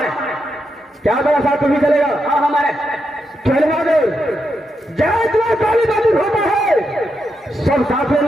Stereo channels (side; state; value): both; normal; correlation 0.84